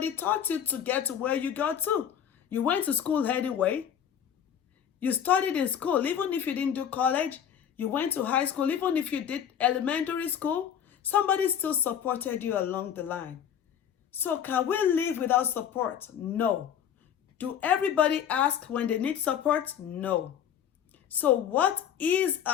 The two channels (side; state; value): right; quieter; 9.0 dB